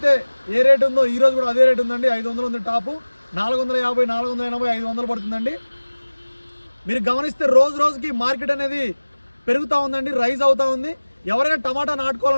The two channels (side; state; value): both; inverted; correlation -1.00